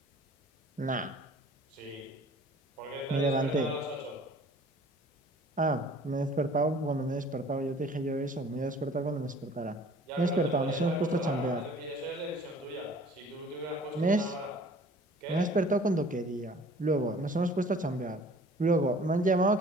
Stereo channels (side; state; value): both; normal; correlation 0.51